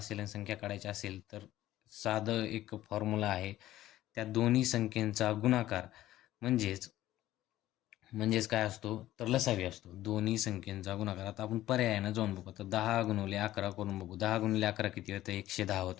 आणि संख्या काढायची असेल तर साधं एक फॉर्म्युला आहे. त्या दोन्ही संख्येचा गुणाकार म्हणजेच म्हणजेच काय असतो तर लसावी असतो. दोन्ही संख्येचा गुणाकार. आता आपण पर्यायानं जाऊन बघू. तर 10 गुणिले 11 करून बघू. 10 गुणिले 11 किती होतं? 110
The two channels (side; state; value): right; quieter; 14.5 dB